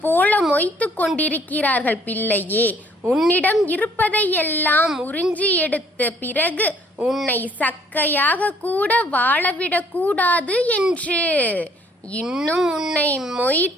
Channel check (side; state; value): both; normal; correlation 0.61